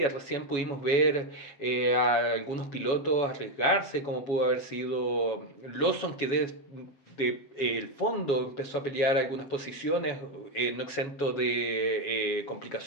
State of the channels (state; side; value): late; right; 7.2 ms